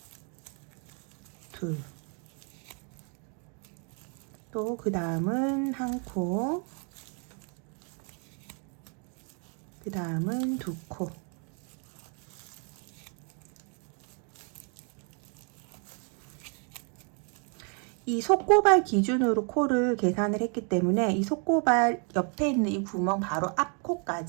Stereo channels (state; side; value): quieter; left; 39.1 dB